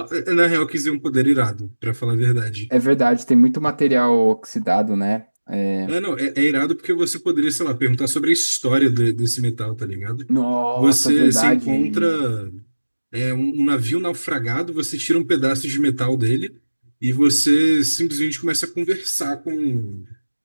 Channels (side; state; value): both; inverted; correlation -1.00